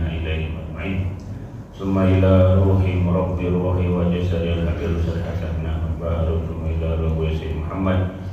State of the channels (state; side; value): identical; both; correlation 1.00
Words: أجمعين ثم إلى روح رب الروح وجسد الحبيب الحسن بن أحمد بارك ثم إلى روح سيد محمد